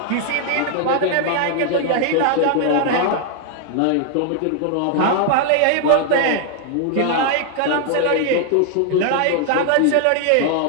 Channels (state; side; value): different; both; correlation 0.00